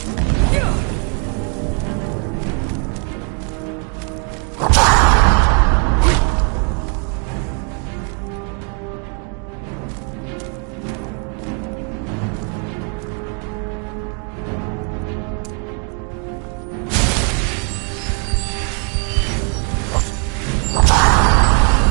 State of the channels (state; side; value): quieter; left; 39.1 dB